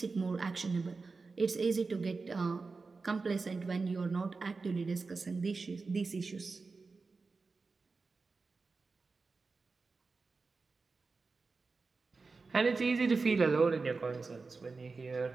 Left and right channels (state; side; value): quieter; left; 4.2 dB